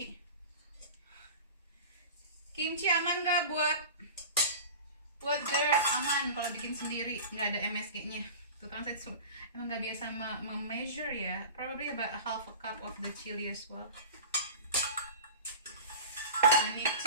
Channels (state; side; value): inverted; both; correlation -0.35